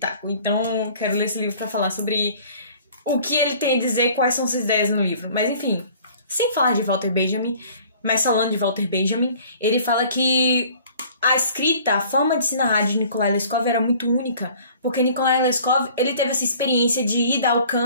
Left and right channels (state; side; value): inverted; both; correlation -0.51